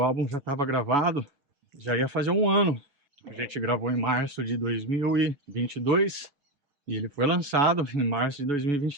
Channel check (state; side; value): late; left; 7.0 ms